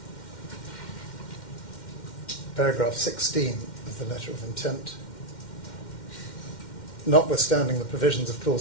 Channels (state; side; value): late; right; 2.1 ms